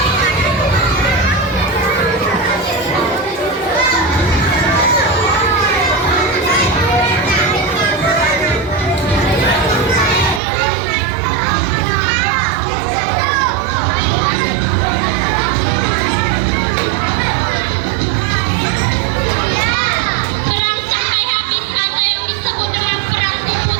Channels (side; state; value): left; drops out; at 10.4 s